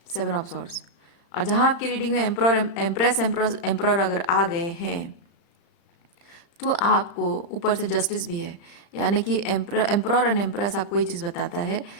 7 ऑफ सॉर्ड्स। और जहाँ आपकी रीडिंग में एम्प्रॉर, एम्प्रेस, एम्प्रॉर अगर आ गए हैं तो आपको ऊपर से जस्टिस भी है। यानी कि एम्प्रॉर एंड एम्प्रेस आपको ये चीज़ बताता है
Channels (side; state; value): right; late; 35 ms